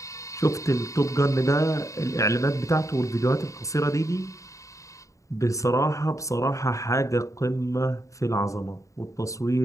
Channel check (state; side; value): late; right; 0.15 ms